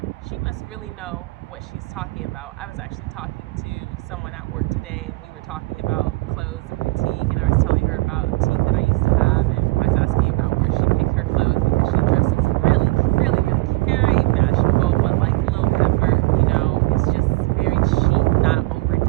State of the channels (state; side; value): quieter; left; 21.8 dB